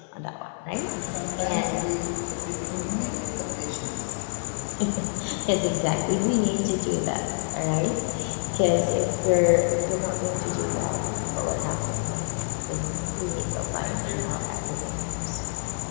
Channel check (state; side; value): silent; right; 60 dB below the other